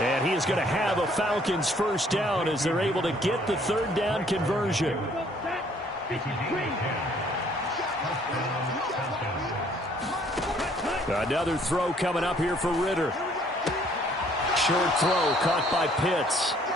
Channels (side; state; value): both; normal; correlation 0.61